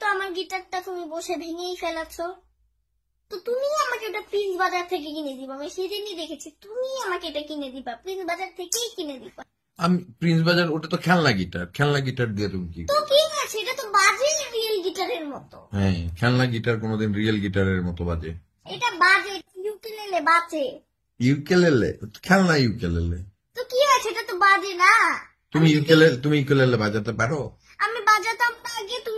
আমার গিটারটা তুমি বসে ভেঙেই ফেলাচ্ছো, তো তুমি আমাকে ওটা প্রিন্স বাজার থেকে কিনে দিবা। আমি সেদিনই দেখেছি তুমি আমাকে এটা কিনে দিবা, প্রিন্স বাজার থেকেই কিনে দিবা। আমি প্রিন্স বাজার, ওটা তো খেলনা গিটার। খেলনা গিটার দিয়ে তুমি কি? তো কি আছে, এটা তো বাজে রিয়েল গিটারের মতো। হ্যাঁ, খেলনা গিটার কোনোদিন রিয়েল গিটারের মতো বাজে? এটা বাজে, ইউকেলেলে বাজে। ইউকেলেলে? খেলনা ইউকেলেলে। তো কি আছে, এটা তো বাজে না। তুমি ইউকেলেলে বাজাতে পারো? আমি বাজাতাম না আগে।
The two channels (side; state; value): both; identical; correlation 1.00